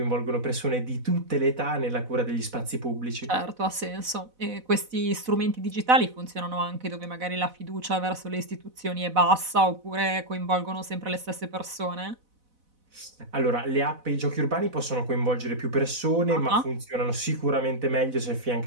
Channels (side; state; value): left; late; 4.0 ms